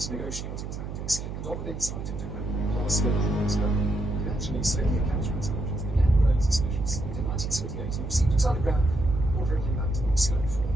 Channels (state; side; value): noise; right; hum, 7 dB below the sound